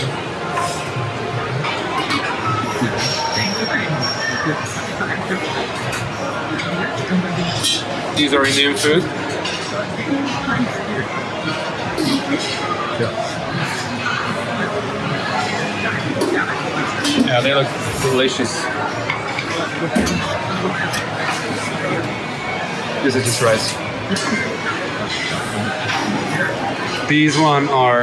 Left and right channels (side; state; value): both; identical; correlation 1.00